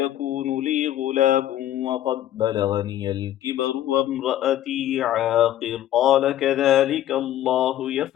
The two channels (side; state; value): right; quieter; 12.6 dB